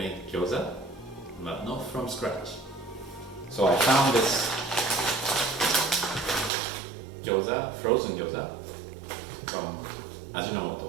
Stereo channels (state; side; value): drops out; left; at 6.5 s